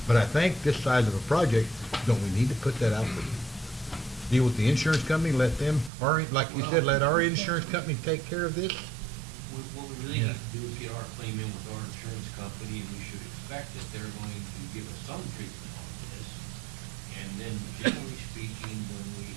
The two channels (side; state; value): left; drops out; at 5.9 s